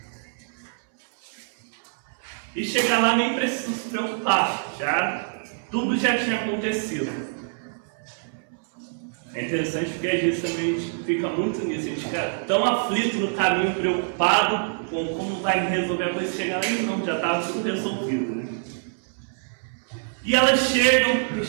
E chegar lá nem precisa se preocupar, tudo já tinha acontecido. É interessante porque às vezes também a gente fica muito nisso, a gente fica tão aflito no caminho, preocupado com como vai resolver a coisa, chegar lá e não, já estava tudo resolvido, né? E elas chegam,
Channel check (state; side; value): silent; left; 62 dB below the other